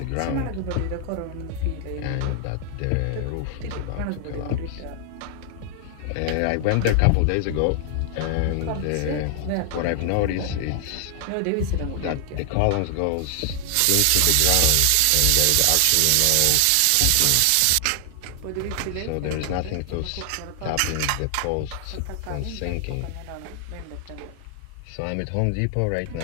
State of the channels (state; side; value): different; both; correlation 0.00